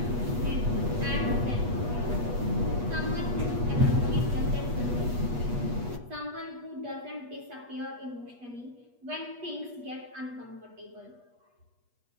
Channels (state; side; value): late; left; 8.3 ms